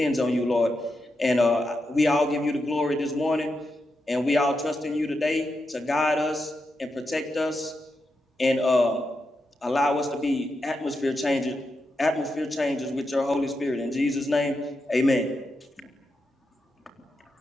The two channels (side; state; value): both; normal; correlation 0.86